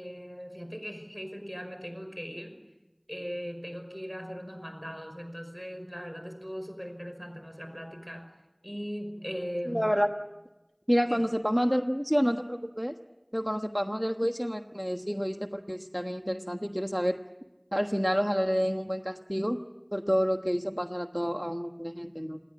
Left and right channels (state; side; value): identical; both; correlation 1.00